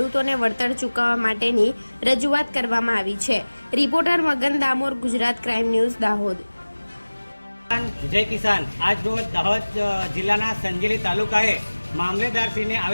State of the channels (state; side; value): inverted; both; correlation -1.00